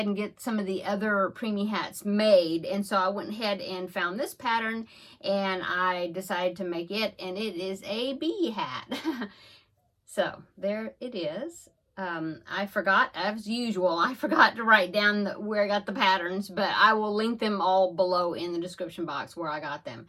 and get some of the other preemie hats made. And so I went ahead and found this pattern and I decided to make it, and it is a bee hat. So there it is. I forgot, as usual, I forgot to write down where I got the patterns, but I will link them all below in the description box where I got them.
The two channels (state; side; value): identical; both; correlation 1.00